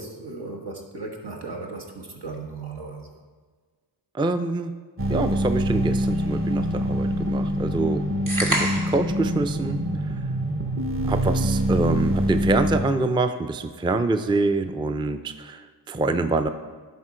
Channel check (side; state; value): both; normal; correlation 0.66